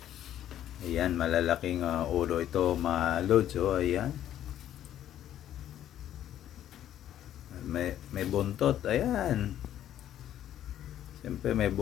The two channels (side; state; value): right; quieter; 11.4 dB